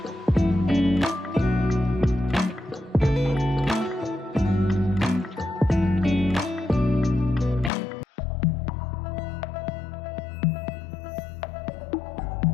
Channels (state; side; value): drops out; right; at 7.7 s